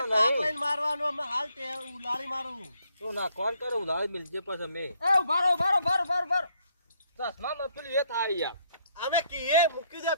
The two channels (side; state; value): both; inverted; correlation -0.70